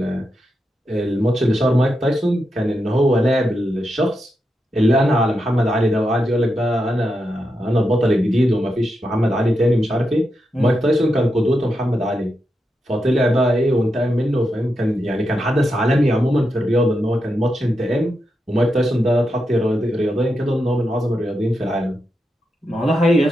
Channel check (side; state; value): both; normal; correlation 0.86